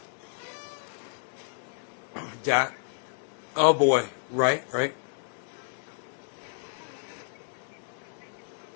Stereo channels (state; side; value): silent; right; digital silence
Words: Dad? Oh boy. Right.